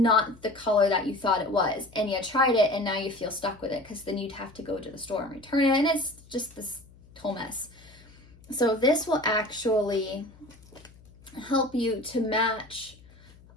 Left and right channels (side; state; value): left; noise; hum, 24 dB below the sound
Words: the color that you thought it was, and you tried it and now you feel stuck with it, because then you'd have to go to the store and return it, and it's just this whole mess. So this will actually help you to match